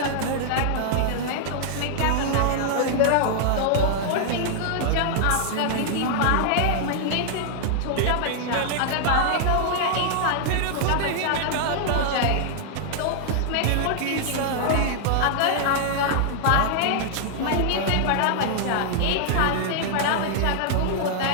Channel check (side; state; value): both; different; correlation -0.01